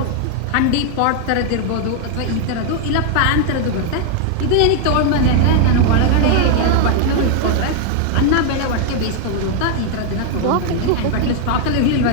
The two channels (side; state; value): both; different; correlation 0.00